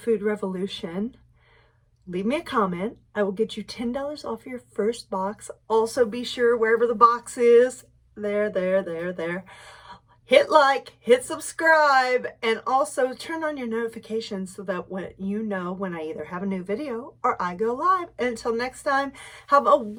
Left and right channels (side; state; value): both; identical; correlation 1.00